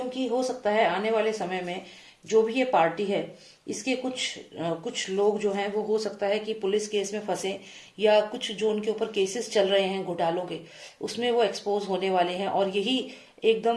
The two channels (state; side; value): identical; both; correlation 1.00